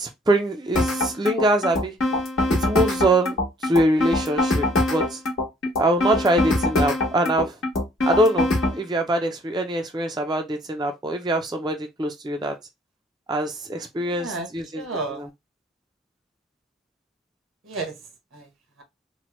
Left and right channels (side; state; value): both; normal; correlation 0.60